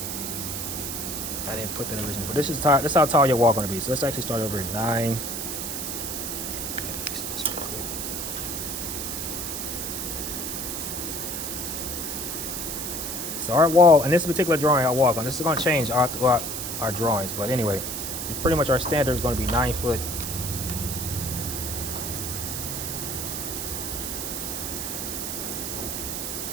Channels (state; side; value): noise; right; hiss, 4 dB below the sound